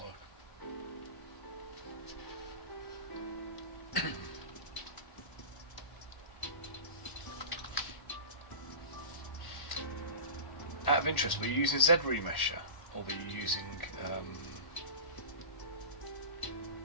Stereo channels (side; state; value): right; late; 1.1 ms